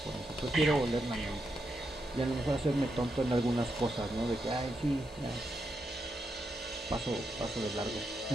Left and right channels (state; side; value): normal; both; correlation 0.83